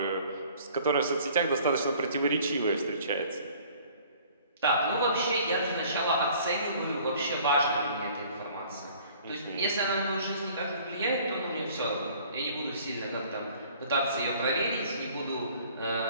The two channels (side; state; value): both; inverted; correlation -0.53